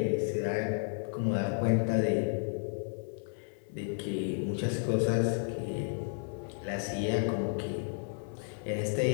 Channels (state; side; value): silent; right; 56 dB below the other